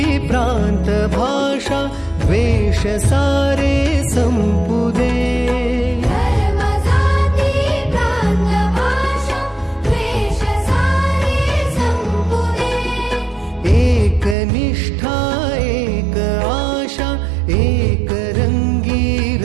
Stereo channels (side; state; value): left; drops out; at 14.4 s